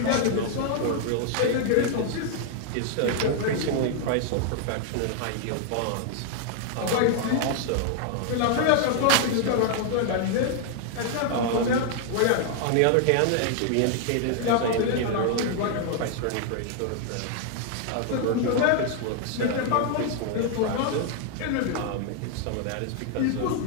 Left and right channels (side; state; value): both; different; correlation 0.00